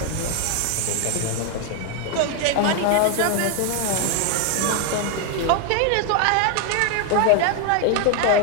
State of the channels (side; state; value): both; different; correlation 0.01